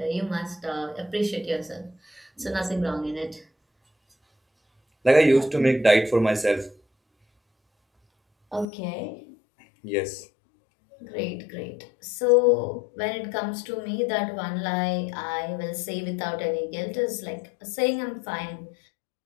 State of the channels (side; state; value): right; drops out; at 8.7 s